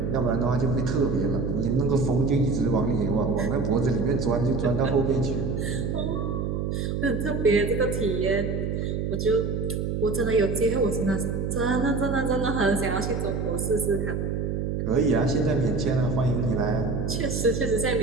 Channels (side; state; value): right; noise; hum, 1 dB below the sound